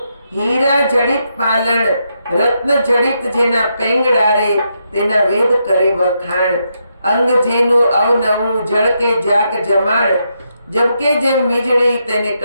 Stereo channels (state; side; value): inverted; both; correlation -0.81